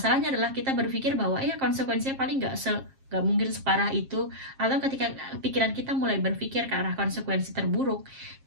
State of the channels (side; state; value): left; late; 7.5 ms